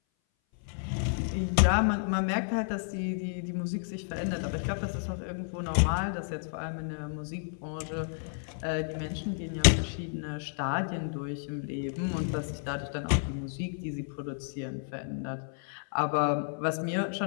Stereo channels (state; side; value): silent; right; 57 dB below the other